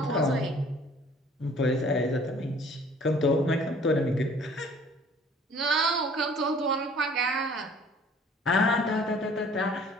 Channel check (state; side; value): normal; both; correlation 0.53